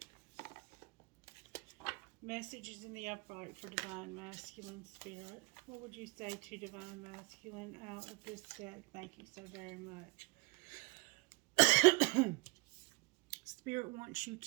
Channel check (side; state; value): left; quieter; 26.4 dB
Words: Messages in the upright for Divine Masculine Spirit. What would you say to Divine Masculine out of this deck? Thank you so very much. Spirit wants you